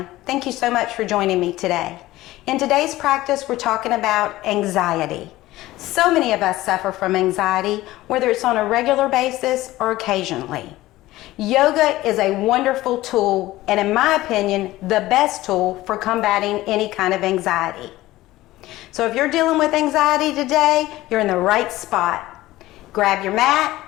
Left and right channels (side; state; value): right; quieter; 17.0 dB